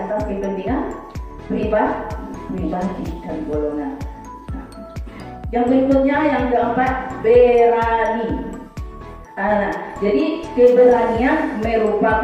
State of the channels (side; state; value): both; identical; correlation 1.00